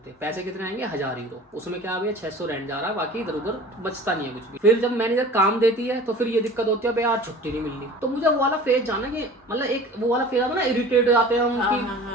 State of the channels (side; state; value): both; normal; correlation 0.42